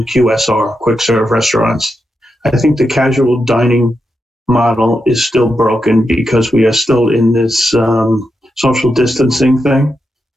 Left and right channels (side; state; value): both; normal; correlation 0.86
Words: QSR, quick serve restaurants. I think the casual dining model is still broken because we are still in this social distancing thing.